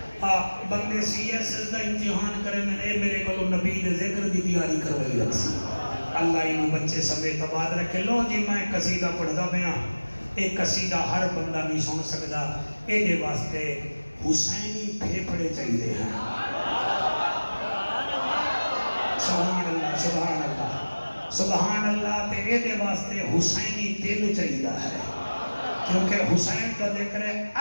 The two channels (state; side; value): inverted; both; correlation -1.00